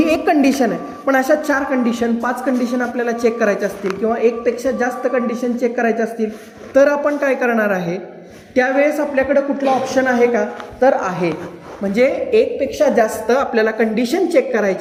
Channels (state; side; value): identical; both; correlation 1.00